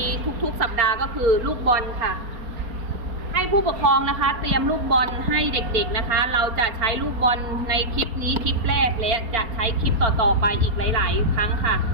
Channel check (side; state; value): left; late; 4.2 ms